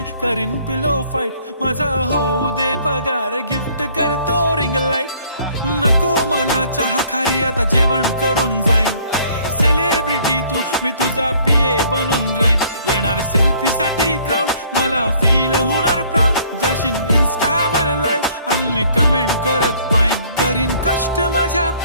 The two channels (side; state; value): both; inverted; correlation -0.59